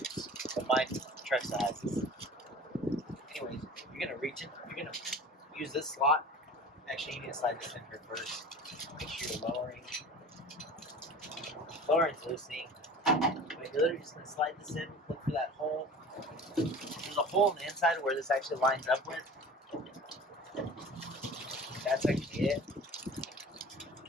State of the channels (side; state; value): both; normal; correlation 0.40